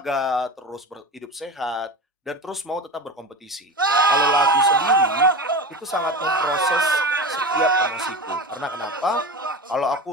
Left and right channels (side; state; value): both; normal; correlation 0.27